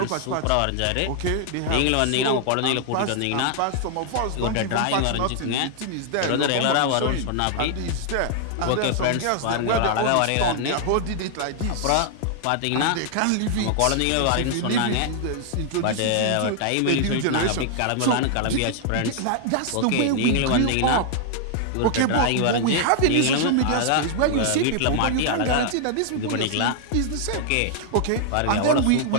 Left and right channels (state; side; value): different; both; correlation 0.00